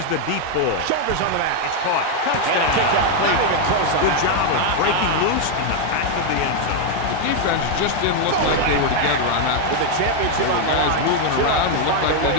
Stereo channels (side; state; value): both; different; correlation 0.01